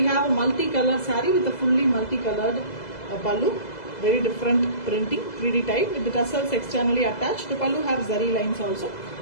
have a multicolored saree with a fully multicolored pallu, very different printing, 3D type with the tassels externally attached. The pallu have zari lines also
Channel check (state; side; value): late; right; 2.0 ms